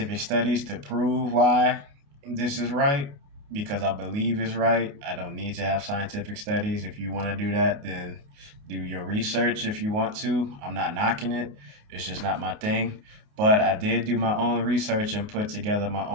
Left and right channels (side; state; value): left; late; 28 ms